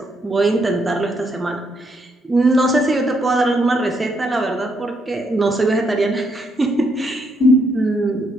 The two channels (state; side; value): normal; both; correlation 0.75